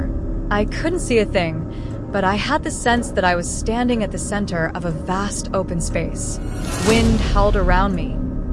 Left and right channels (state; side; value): identical; both; correlation 1.00